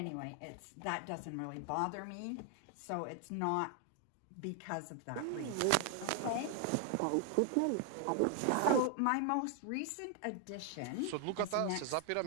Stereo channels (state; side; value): different; both; correlation 0.00